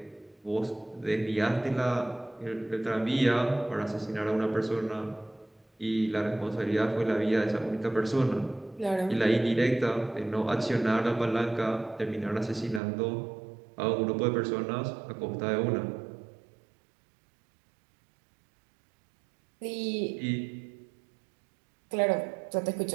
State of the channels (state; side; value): drops out; left; at 12.8 s